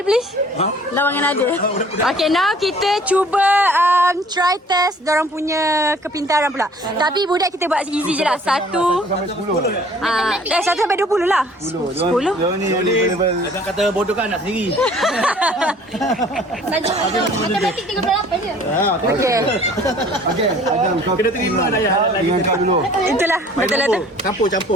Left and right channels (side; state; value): both; normal; correlation 0.52